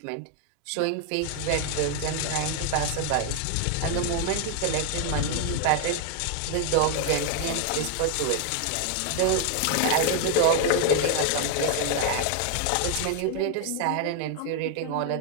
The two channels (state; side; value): different; both; correlation 0.00